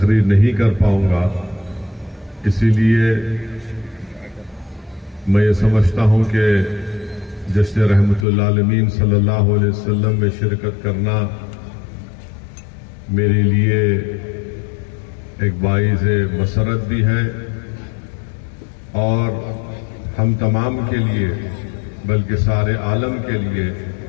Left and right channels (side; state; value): right; drops out; at 8.2 s